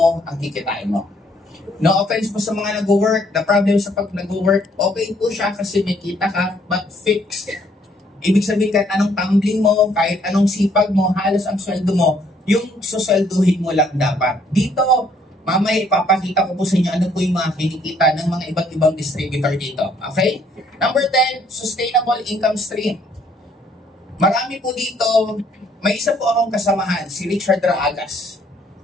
ang kikitain mo. No offense po sa mga nag-work. The problem sa pag nag-work, okay po siya kasi may kita ka, but fixed. Ibig sabihin kahit anong tumbling mo, kahit anong sipag mo, halos ang sweldo mo, yung suswelduhin mo lang dapat. Dito, mamaya ipapakita ko po sa inyo ano po yung mga kinikita ng mga iba't ibang distributor dito. Okay? Number 10, sustainable income stream. Marami po dito, may isa po akong kasamahan, si Richard Raagas.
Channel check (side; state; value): both; normal; correlation 0.65